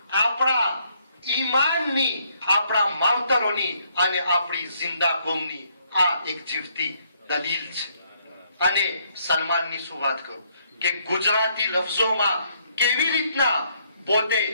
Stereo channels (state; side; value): inverted; both; correlation -0.70